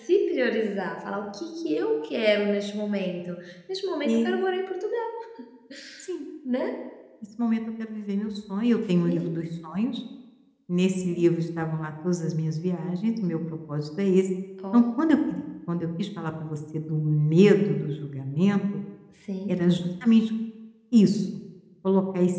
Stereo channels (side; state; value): both; identical; correlation 1.00